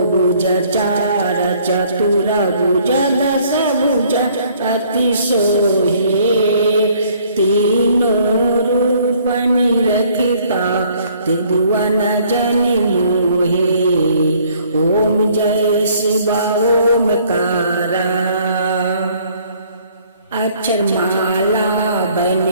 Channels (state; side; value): inverted; both; correlation -0.61